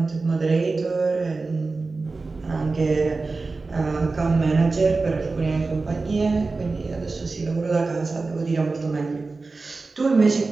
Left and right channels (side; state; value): left; quieter; 3.8 dB